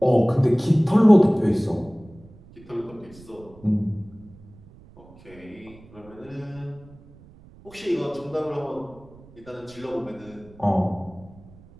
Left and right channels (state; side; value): noise; right; rumble, 23 dB below the sound